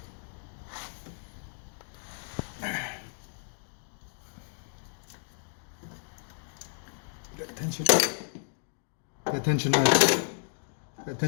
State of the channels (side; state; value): right; silent; digital silence